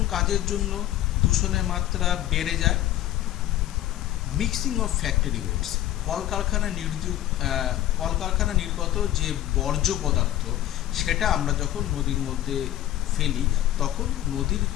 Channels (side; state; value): right; quieter; 13.4 dB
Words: কাজের জন্য দূষণের মাত্রা বেড়ে যায়? মিক্সিং অফ ফ্যাক্টরি ওয়েস্ট, কলকারখানা নির্গত যে বর্জ্য পদার্থ সেটা আমরা যখন নদীর মধ্যে ফেলি তখন নদীর